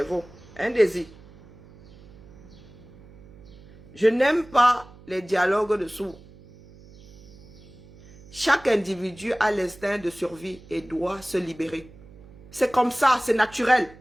Un désir. Je n'aime pas les dialogues de sourds. Chaque individu a l'instinct de survie et doit se libérer. C'est comme ça, c'est naturel.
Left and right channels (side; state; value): right; noise; hum, 22 dB below the sound